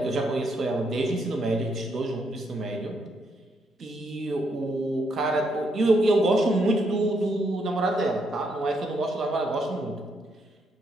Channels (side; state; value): both; normal; correlation 0.76